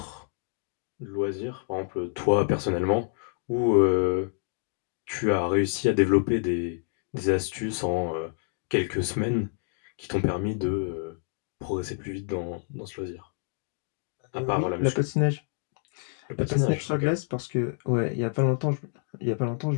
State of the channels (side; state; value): right; silent; digital silence